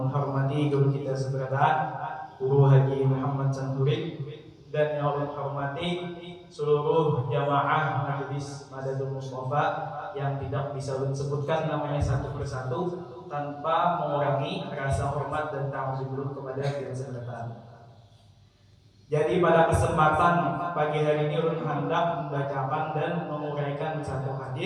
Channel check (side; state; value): both; identical; correlation 1.00